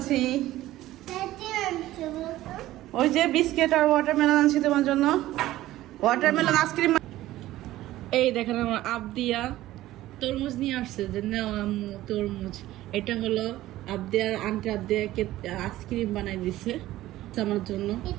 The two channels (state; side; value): quieter; left; 15.5 dB